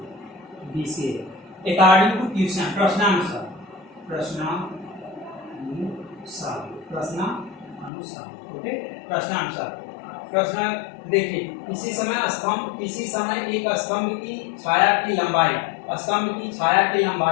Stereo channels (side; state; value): right; drops out; at 7.9 s